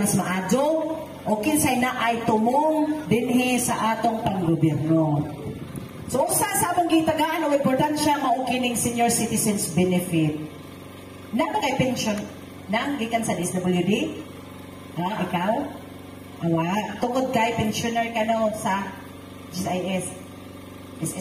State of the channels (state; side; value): identical; both; correlation 1.00